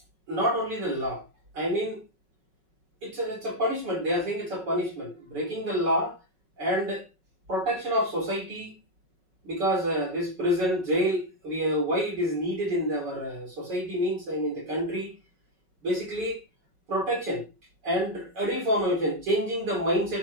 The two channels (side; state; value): left; late; 5.4 ms